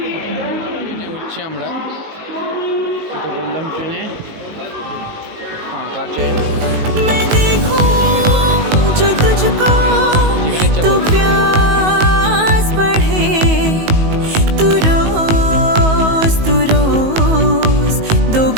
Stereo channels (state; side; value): late; left; 19 ms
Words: ট্রেনে উঠছি আমরা। তো বললাম ট্রেনে ফাঁকা ট্রেন।